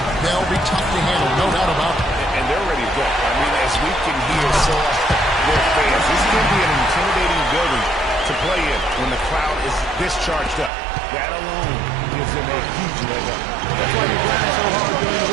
They'll be tough to handle, no doubt about it. And they're ready to go. I mean, as we can hear their fans, this is going to be an intimidating building to play in when the crowd is this charged up. That alone gives them a huge leg up. That's why you grind so hard during the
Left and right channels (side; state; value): left; drops out; at 10.7 s